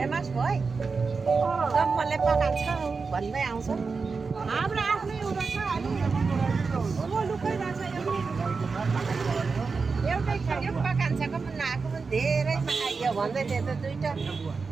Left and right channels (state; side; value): quieter; left; 4.7 dB